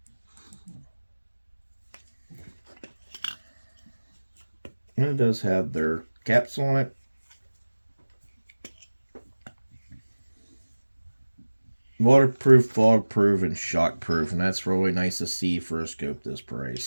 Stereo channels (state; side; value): inverted; both; correlation -1.00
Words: And it does have their caps on it. Waterproof, fog-proof, and shock-proof. And that's really nice to see for a scope this